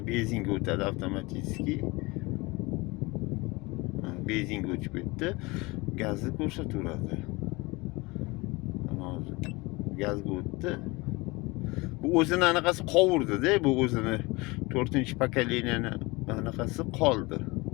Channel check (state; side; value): quieter; right; 24.1 dB